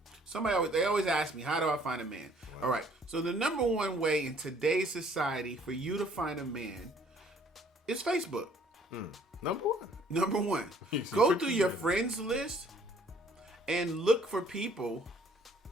always ask me, how do I find a man? Wow. All right. So the number one way in today's society for you to find a man is Facebook. Number one. Go through your friends list and look for people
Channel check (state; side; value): normal; both; correlation 0.59